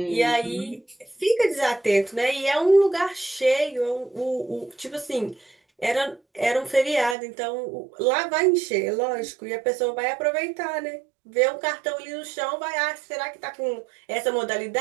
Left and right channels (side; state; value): left; drops out; at 7.2 s